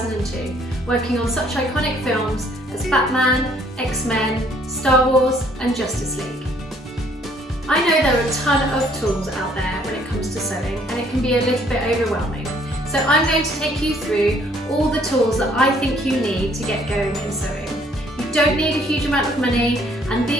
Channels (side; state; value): both; normal; correlation 0.62